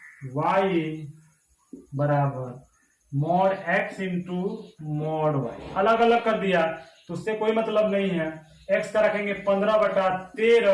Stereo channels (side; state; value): both; identical; correlation 1.00